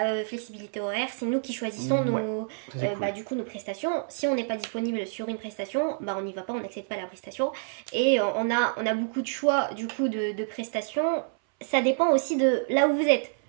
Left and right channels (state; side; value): silent; left; 60 dB below the other